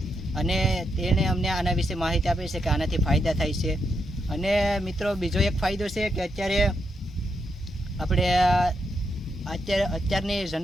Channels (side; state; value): both; normal; correlation 0.82